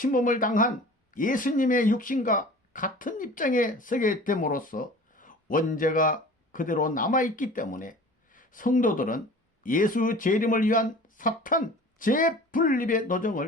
당한 예수님의 육신과 같은 입장에 서게 됨으로써 원죄가 그대로 남아있기 때문에 성도들은 예수 재림을 위한 사탄 재분립의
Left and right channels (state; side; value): normal; both; correlation 0.43